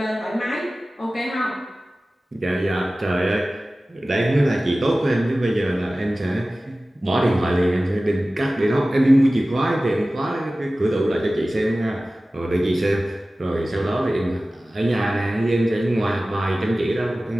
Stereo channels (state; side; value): normal; both; correlation 0.97